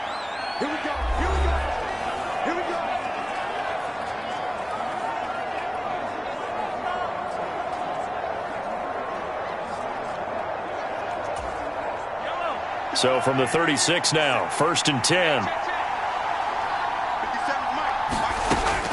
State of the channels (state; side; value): identical; both; correlation 1.00